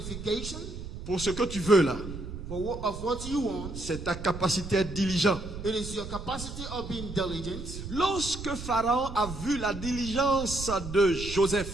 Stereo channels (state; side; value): noise; right; rumble, 9 dB below the sound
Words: pour ce que tu veux là, for what you want, c'est ta capacité à être diligent. it is your capacity of being diligent. Lorsque Pharaon a vu la diligence de